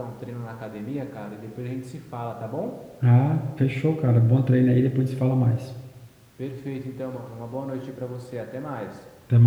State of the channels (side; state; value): both; identical; correlation 1.00